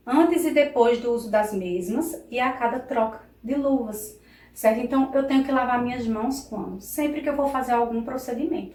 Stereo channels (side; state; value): both; identical; correlation 1.00